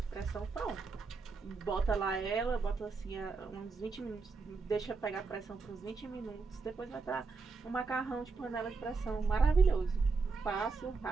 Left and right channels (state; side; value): quieter; left; 4.4 dB